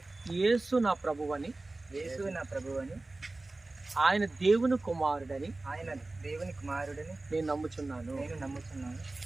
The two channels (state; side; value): quieter; left; 3.1 dB